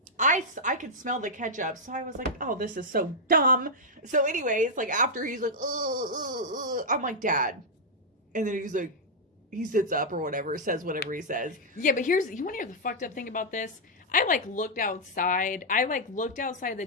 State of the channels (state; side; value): normal; both; correlation -0.05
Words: I could smell the ketchup, so I was like, oh, this is so dumb. So anyways, like, after he's like, I'm like, Dad. And then he's like, he sits up or whatever, says whatever he says. Yeah, but you want to hear the fucked up thing about this? I looked outside. I looked outside the